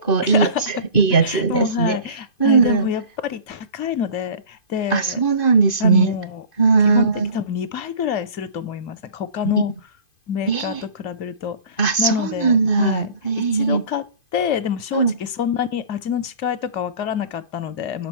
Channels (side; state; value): right; late; 2.5 ms